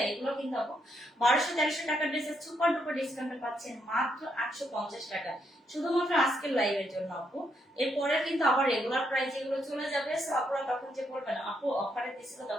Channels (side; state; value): both; normal; correlation 0.77